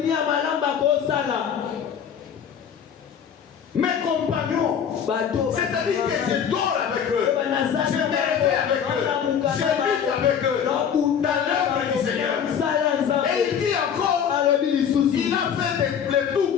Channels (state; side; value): quieter; right; 8.0 dB